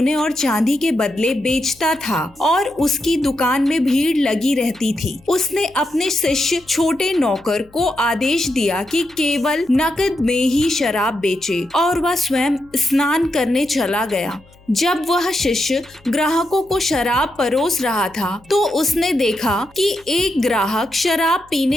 और चांदी के बदले बेचता था और उसकी दुकान में भीड़ लगी रहती थी। उसने अपने शिष्य छोटे नौकर को आदेश दिया कि केवल नकद में ही शराब बेचे और वह स्वयं स्नान करने चला गया। जब वह शिष्य ग्राहकों को शराब परोस रहा था तो उसने देखा कि एक ग्राहक शराब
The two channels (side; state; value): left; noise; hum, 28 dB below the sound